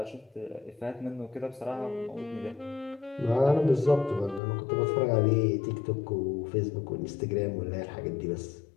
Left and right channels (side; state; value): right; drops out; at 4.4 s